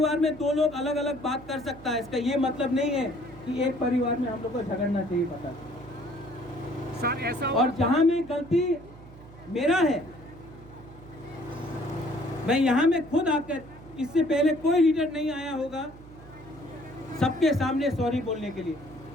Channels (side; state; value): right; noise; hum, 19 dB below the sound